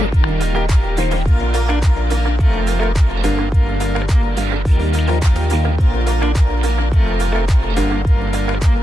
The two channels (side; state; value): both; normal; correlation 0.88